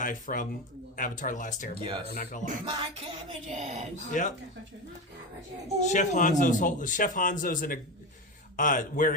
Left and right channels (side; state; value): both; normal; correlation 0.20